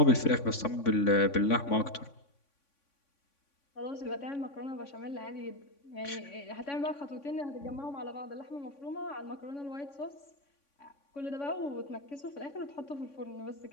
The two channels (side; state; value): right; late; 3.6 ms